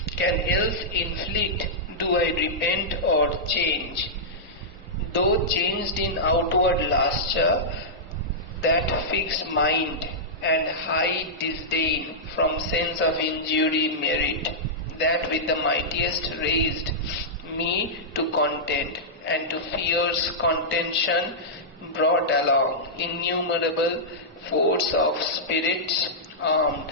can else inflict do I repent or change. Though changed in outward lustre, that fixed mind and high disdain from sense of injury merit, that with the mightiest raised me to content, and to fierce contention brought along innumerable force of spirits armed,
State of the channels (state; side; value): normal; both; correlation -0.12